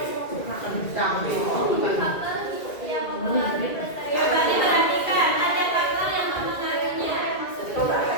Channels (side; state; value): right; late; 2.3 ms